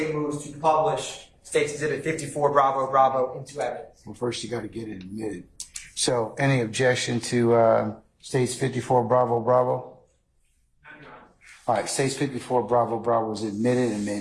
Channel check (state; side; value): identical; both; correlation 1.00